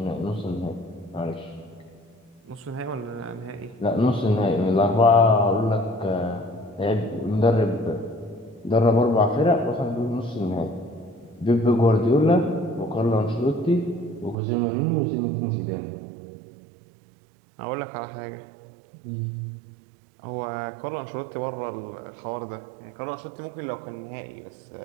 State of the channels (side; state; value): left; drops out; at 14.4 s